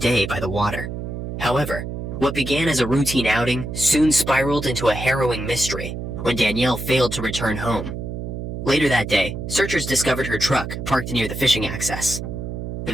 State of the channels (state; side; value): noise; right; hum, 6 dB below the sound